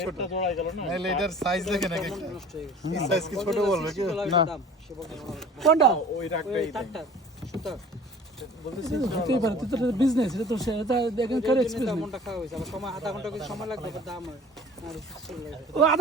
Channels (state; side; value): normal; both; correlation 0.46